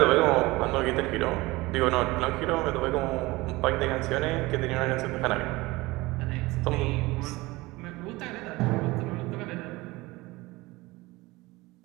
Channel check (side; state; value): left; quieter; 21.2 dB